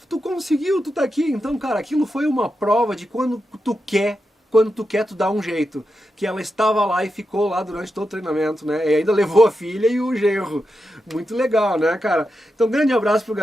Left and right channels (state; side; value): normal; both; correlation 0.88